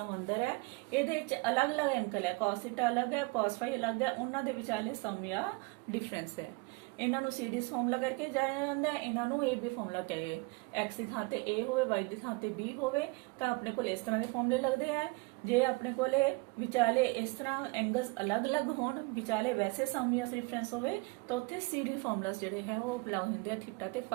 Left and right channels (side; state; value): left; quieter; 27.4 dB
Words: ਅੰਦਰ ਹੈ ਇਹਦੇ ਵਿੱਚ ਅਲੱਗ-ਅਲੱਗ ਐਂਗਲ ਹੈ cos ਥੀਟਾ ਅਲੱਗ ਹੈ cos phi ਅਲੱਗ ਹੈ ਉਹਨਾਂ ਦੇ ਵਿਚਾਲੇ ਸਮ ਜਾਂ ਡਿਫਰੈਂਸ ਹੈ। ਇਹਨਾਂ ਨੂੰ ਸੀਰੀਜ਼ ਫਾਰਮੂਲਾ ਕਰਕੇ ਜਾਣਿਆ ਜਾਂਦਾ ਹੈ ਇਹਨਾਂ ਨੂੰ AB ਫਾਰਮੂਲਾ ਕਹੇ x ਦੀ ਥਾਂ ਤੇ A ਹੋਵੇ y ਦੀ ਥਾਂ ਤੇ B ਹੋਵੇ ਤਾਂ ਆਪਣੇ ਕੋਲ ਇਸ ਤਰ੍ਹਾਂ ਦੇ ਫਾਰਮੂਲੇ ਲੱਗਦੇ ਆ। ਜੇ ਆਪਣੇ ਕੋਲੇ ਵਿਚਾਲੇ ਇਸ ਤਰ੍ਹਾਂ ਐਂਗਲਸ ਅਲੱਗ-ਅਲੱਗ ਹੋਣ ਵਿਚਾਲੇ ਵੈਸੇ ਸਮ ਜਾਂ ਡਿਫਰੈਂਸ ਹੋਵੇ ਤਾਂ ਉੱਥੇ CD ਫਾਰਮੂਲਾਸ ਜਿਹੜੇ ਹੈ ਉਹ ਅਪਲਾਈ ਹੁੰਦੇ ਆ ਥੀਟਾ ਤੇ